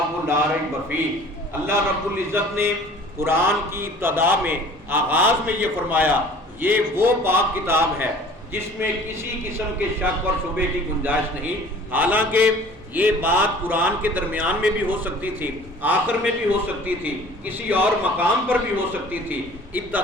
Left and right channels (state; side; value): normal; both; correlation 0.47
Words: لا ریب فیہ۔ اللہ رب العزت نے قرآن کی ابتدا میں، آغاز میں یہ فرمایا یہ وہ پاک کتاب ہے جس میں کسی قسم کے شک اور شبے کی گنجائش نہیں۔ حالانکہ یہ بات قرآن کے درمیان میں بھی ہو سکتی تھی، آخر میں بھی ہو سکتی تھی، کسی اور مقام پر بھی ہو سکتی تھی۔